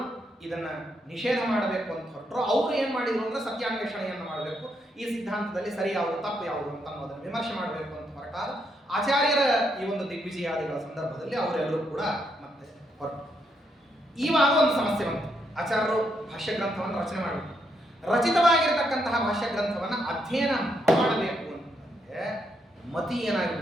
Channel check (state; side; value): normal; both; correlation 0.78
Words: ಇದನ್ನ ನಿಷೇಧ ಮಾಡಬೇಕು ಅಂತ ಹೊರಟರು, ಅವ್ರು ಏನ್ ಮಾಡಿದ್ರು ಅಂದ್ರೆ ಸತ್ಯಾನ್ವೇಷಣೆಯನ್ನು ಮಾಡಬೇಕು, ಈ ಸಿದ್ಧಾಂತದಲ್ಲಿ ಸರಿ ಯಾವುದು ತಪ್ಪು ಯಾವುದು ಅಂತ ಅನ್ನೋದನ್ನು ವಿಮರ್ಶೆ ಮಾಡಬೇಕು ಅಂತ ಹೊರಟಾಗ ಆಚಾರ್ಯರ ಈ ಒಂದು ದಿಗ್ವಿಜಯಾದಿಗಳ ಸಂದರ್ಭದಲ್ಲಿ ಅವರೆಲ್ಲರೂ ಕೂಡ ಮತ್ತೆ ಹೊರಟು. ಇವಾಗ ಒಂದು ಸಮಸ್ಯೆ ಬಂತು. ಆಚಾರ್ಯರು ಭಾಷ್ಯ ಗ್ರಂಥವನ್ನು ರಚನೆ ಮಾಡಬೇಕು, ರಚಿತವಾಗಿರತಕ್ಕಂತಹ ಭಾಷ್ಯ ಗ್ರಂಥವನ್ನು ಅಧ್ಯಯನ ಮಾಡಬೇಕು ಅಂತಂದ್ರೆ ಮತಿ